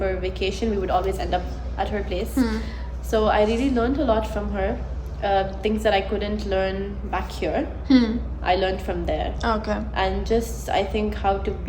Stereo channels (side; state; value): both; identical; correlation 1.00